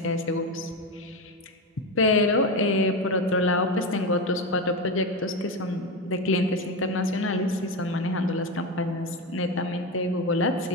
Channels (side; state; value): both; normal; correlation 0.17